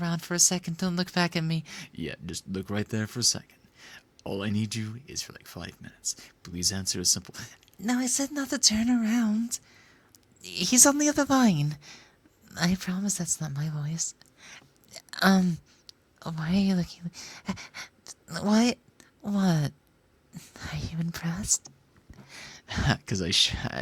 for a second, don't look back at me. Yeah, just look right there for a second. All I need you is for like 5 minutes. Please answer a simple... No, I said not to turn around. He's on the other line. I promise that's not my voice. Why are you looking... What? What? Are you impressed? Because I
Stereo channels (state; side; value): identical; both; correlation 1.00